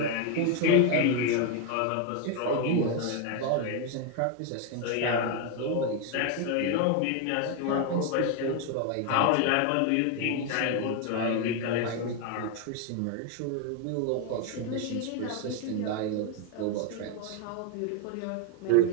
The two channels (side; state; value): both; different; correlation 0.01